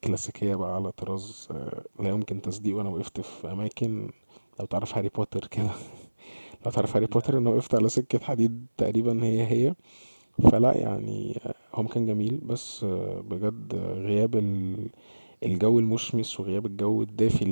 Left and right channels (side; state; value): both; inverted; correlation -1.00